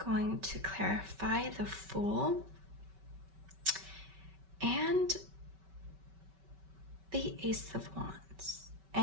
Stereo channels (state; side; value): late; left; 5.2 ms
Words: going to clarify the Fool and the Ace of Wands